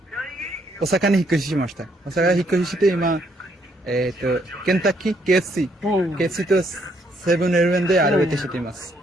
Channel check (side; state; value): both; normal; correlation 0.71